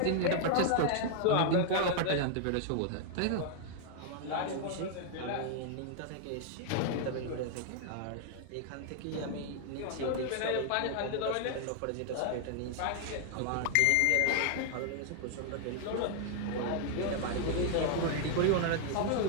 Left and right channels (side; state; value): both; different; correlation 0.00